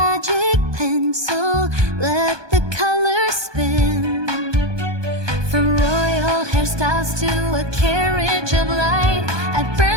pencil, let the colors spin. From royal hairstyles to a carriage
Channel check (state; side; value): late; left; 1.2 ms